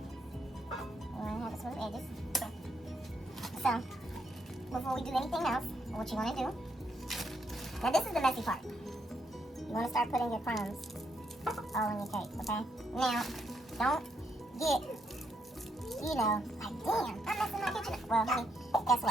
wanna have it smooth edges. So before we do anything else, what you wanna do? Now this is the messy part. You want to start putting your crumbs all in your cake, okay? Now, don't get, like, damn, I'm messing my kitchen up. Well, honey, guess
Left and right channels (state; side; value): normal; both; correlation 0.76